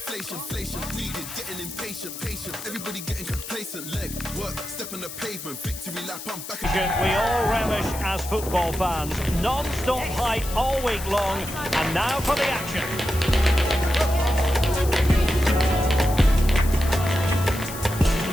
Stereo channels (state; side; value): noise; left; hiss, 11 dB below the sound